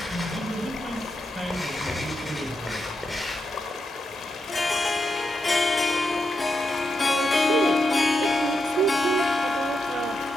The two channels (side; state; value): both; normal; correlation 0.84